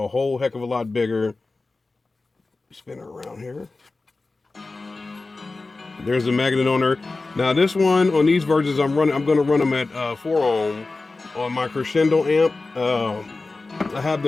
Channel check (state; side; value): quieter; right; 3.5 dB